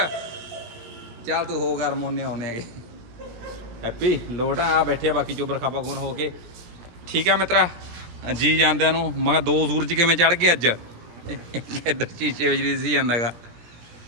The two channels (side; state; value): left; late; 17 ms